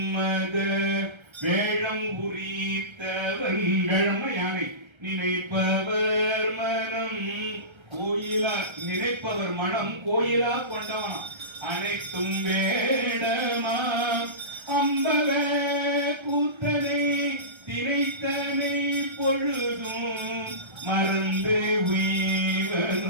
வேழம் உரித்தவன். வேழம்னா யானை. நினைப்பவர் மனம் கோயிலா, நினைப்பவர் மனம் கோயிலா கொண்டவன். அனைத்தும் வேடமா அம்பல கூத்தனை திரைத்தனை பொழுதும் மறந்து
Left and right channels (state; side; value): late; left; 1.3 ms